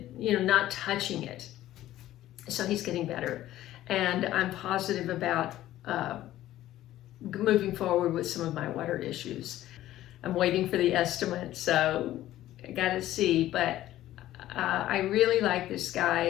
you know, not touching it. So he's getting better. And I'm positive about moving forward with some of my water issues. I'm waiting for the estimate, so I gotta see, but I really like this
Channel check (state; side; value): quieter; right; 14.1 dB